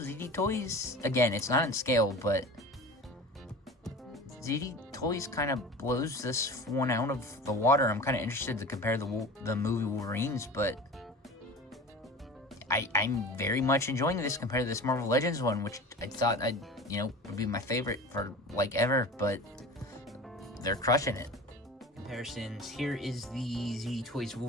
Toys, again, it's not in scale, but ZD Toys kind of blows this one out of the water. I'm kind of interested to compare the movie Wolverines, but I'm very much enjoying this compared to this Marvel Legends one, which I thought would be my favorite for like ever, but they're crushing it. Comparisons, here is the ZD Toys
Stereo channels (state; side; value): normal; both; correlation 0.36